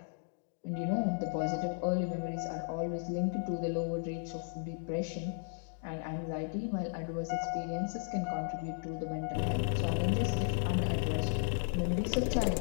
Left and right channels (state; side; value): silent; right; digital silence